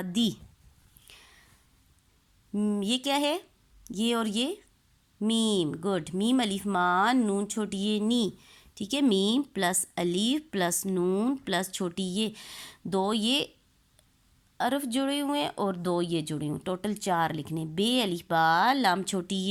ये क्या है, ये और ये मीम। गुड, मीम अलीफ मा, नून छोटी ये नी, ठीक है। मीम प्लस अलीफ प्लस नून प्लस छोटी ये, 2 ये अरफ जुड़े हुए हैं और 2 ये जुड़े हुए, टोटल 4 लिखने। बे अलीफ बा, लाम छोटी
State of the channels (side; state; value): both; identical; correlation 1.00